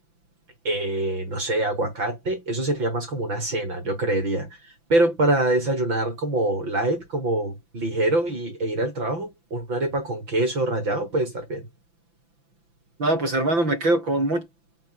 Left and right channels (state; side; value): late; left; 5.9 ms